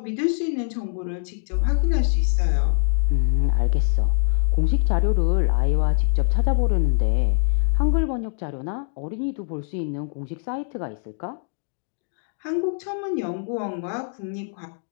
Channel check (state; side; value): silent; right; digital silence